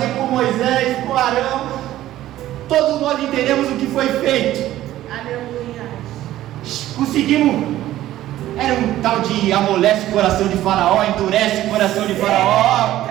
com Moisés, com Arão. Todos nós entendemos o que foi feito. Aleluia. Conseguimos. Era um tal de amolece o coração de Faraó, endurece o coração de Faraó.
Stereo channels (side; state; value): left; quieter; 14.1 dB